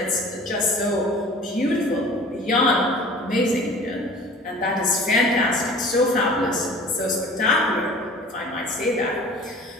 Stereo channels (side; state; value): both; normal; correlation 0.45